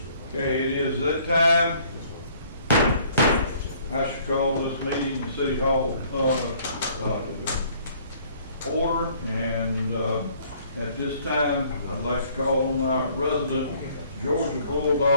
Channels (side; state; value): both; inverted; correlation -0.59